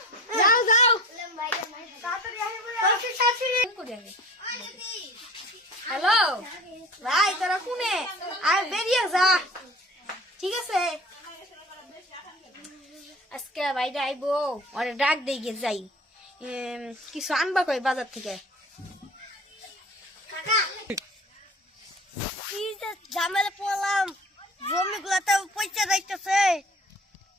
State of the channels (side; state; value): both; normal; correlation 0.41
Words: যাও যাও। তাড়াতাড়ি আসো বলে। কাশি কাশি করে আগে। হ্যালো ভাই, তোরা কোনে? আর বেরিয়ে যা, ঠিক আছে? আজকে বাইরে আইবো, ওরে ডাক দিয়ে যাই, কিছু আনবা কই বাজার থেকে। কি যে ঝামেলা পড়লাম, জমি গুলাতে পয়সা যাইতেছে,